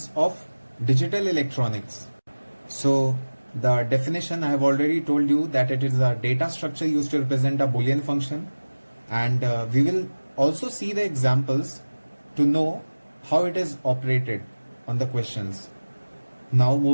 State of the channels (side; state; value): both; inverted; correlation -1.00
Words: of digital electronics. So the definition, I have already told you that it is a data structure used to represent a Boolean function, and we will also see the examples to know how it is operated on the questions. Now